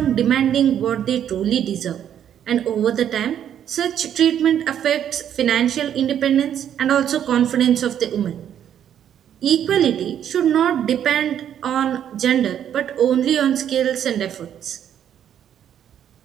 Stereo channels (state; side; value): quieter; left; 9.7 dB